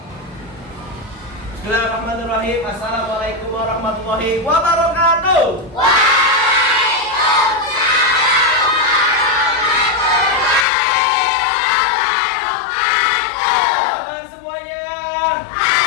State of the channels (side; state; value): right; drops out; at 10.7 s